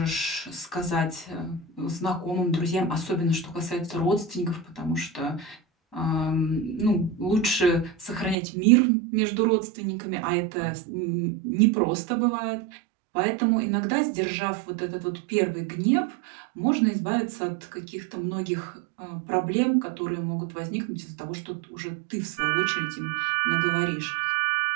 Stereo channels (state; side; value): drops out; left; at 8.3 s